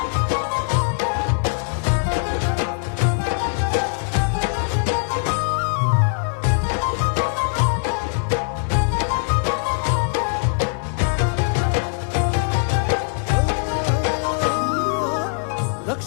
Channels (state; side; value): silent; right; 64 dB below the other